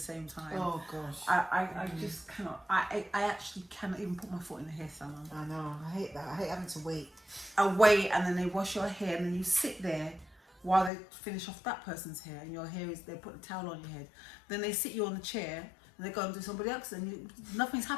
time. Oh gosh. I just cannot. I actually cannot even put my foot in the hair salon. I know. I hate that. I hate having to wait. I wait, and then they wash your hair, and then you sit there while they finish off that person's hair, and your hair is. They put a towel on your head. Then they sit you on the chair. And they go and do somebody else, and nothing's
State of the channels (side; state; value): right; drops out; at 10.9 s